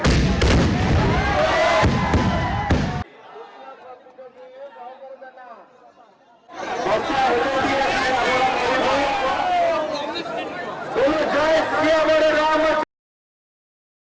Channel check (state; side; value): identical; both; correlation 1.00